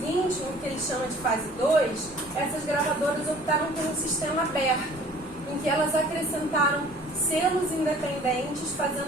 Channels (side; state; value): both; normal; correlation 0.51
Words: no que eles chamam de fase 2, essas gravadoras optaram por um sistema aberto, em que elas acrescentaram selos independentes